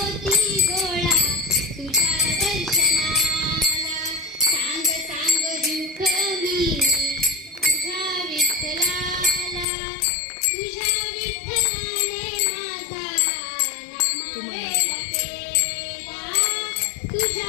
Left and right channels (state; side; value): drops out; right; at 9.7 s